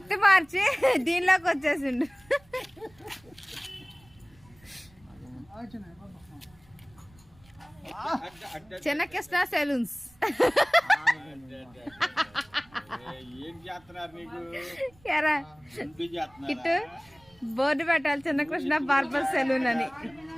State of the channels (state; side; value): noise; right; rumble, 28 dB below the sound